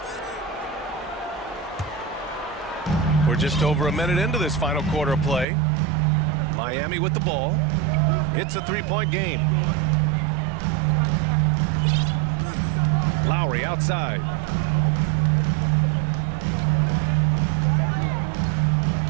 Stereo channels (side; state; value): left; drops out; at 5.5 s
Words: We're just over a minute into this final quarter of play. Miami with the ball. It's a three-point game. Lowry outside.